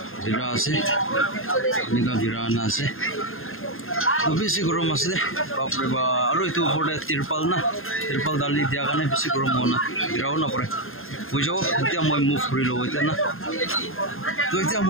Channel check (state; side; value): late; right; 0.60 ms